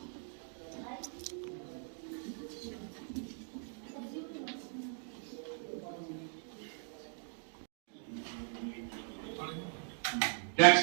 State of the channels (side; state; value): left; silent; 52 dB below the other